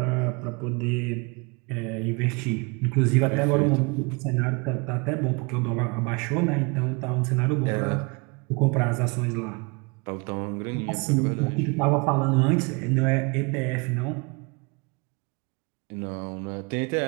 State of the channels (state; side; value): quieter; left; 30.4 dB